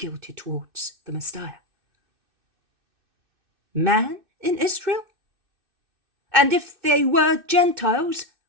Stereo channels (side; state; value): left; late; 2.6 ms